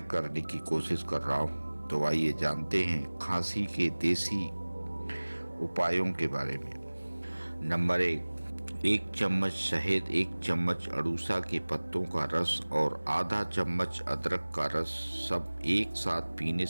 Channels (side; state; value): both; inverted; correlation -1.00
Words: करने की कोशिश कर रहा हूं। तो आइए जानते हैं खांसी के देसी उपायों के बारे में। नंबर 1 चम्मच शहद, 1 चम्मच अड़ूसा के पत्तों का रस और आधा चम्मच अदरक का रस सब एक साथ पीने